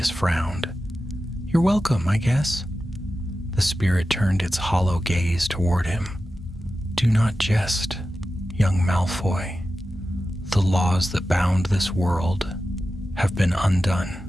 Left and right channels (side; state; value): both; normal; correlation 0.93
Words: frowned. "You're welcome, I guess." The spirit turned its hollow gaze toward him. "Do not jest, young Malfoy. The laws that bound this world have been